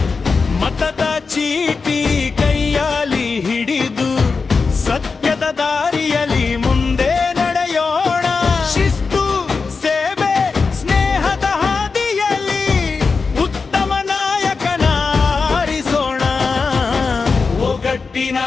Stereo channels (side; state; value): right; quieter; 4.7 dB